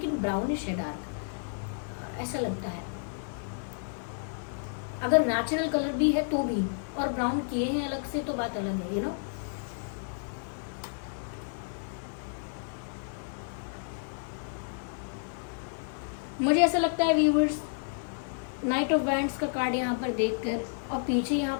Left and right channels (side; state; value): right; silent; digital silence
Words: ब्राउनिश है, डार्क ऐसा लगता है। अगर नेचुरल कलर भी है तो भी, और ब्राउन किए हैं अलग से तो बात अलग है, यू नो। मुझे ऐसा लगता है व्यूवर्स, नाइट ऑफ वैंड्स का कार्ड यहाँ पर देखकर, और पीछे यहाँ